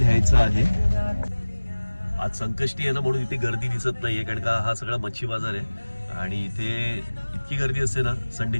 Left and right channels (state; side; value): inverted; both; correlation -1.00